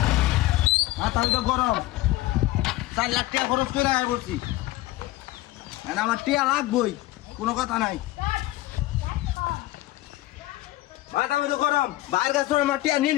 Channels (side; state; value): right; quieter; 17.2 dB